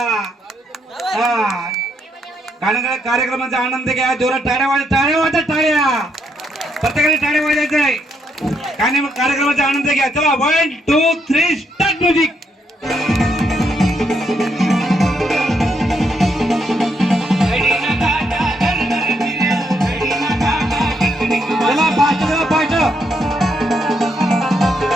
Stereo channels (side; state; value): both; normal; correlation 0.76